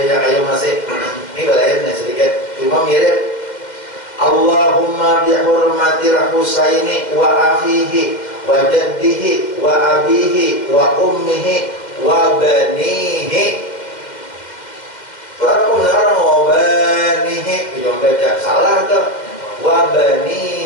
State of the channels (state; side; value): late; right; 2.1 ms